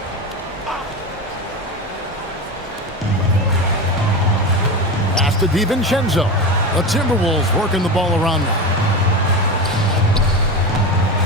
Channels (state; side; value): normal; both; correlation 0.22